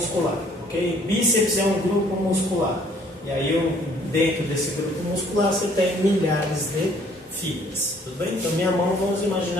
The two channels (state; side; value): normal; both; correlation 0.60